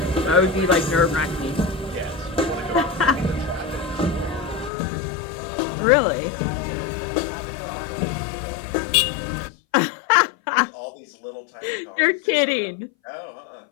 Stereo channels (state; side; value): drops out; right; at 4.7 s